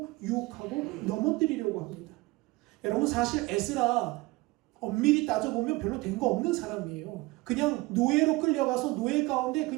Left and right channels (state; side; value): quieter; left; 22.0 dB